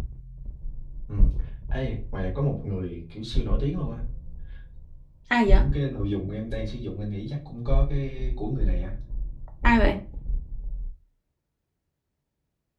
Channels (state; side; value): identical; both; correlation 1.00